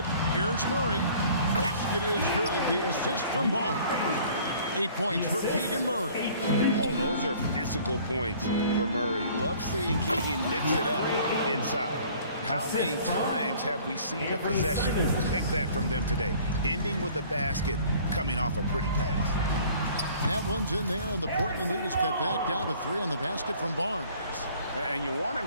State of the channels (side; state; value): both; inverted; correlation -0.52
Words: Here's Murray. Basket is good. The assist from Barnes. 8 points for Keegan Murray. Oh, those are physical points for Murray. Love seeing Keegan mix it up inside. How many times have we seen a possession like that from them today? Ending with a basket, coming off a pretty pass. That one's in there, and the Portland lead is cut back down to 3 on the basket from Barnes. And you want